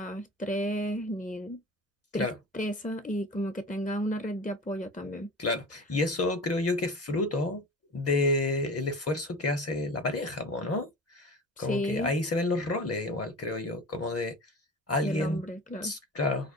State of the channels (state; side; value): normal; both; correlation 0.35